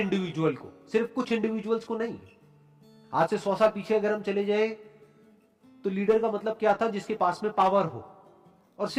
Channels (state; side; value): identical; both; correlation 1.00